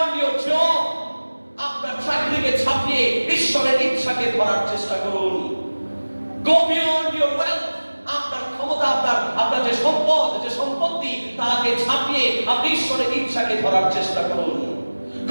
your job, আপনার চাকরিকে ছাপিয়ে ঈশ্বরের ইচ্ছাকে ধরার চেষ্টা করুন। go beyond your wealth, আপনার ক্ষমতা, আপনার যে সম্পদ, যে সম্পত্তি, তাকে ছাপিয়ে আপনি ঈশ্বরের ইচ্ছাকে ধরার চেষ্টা করুন।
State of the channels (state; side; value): inverted; both; correlation -1.00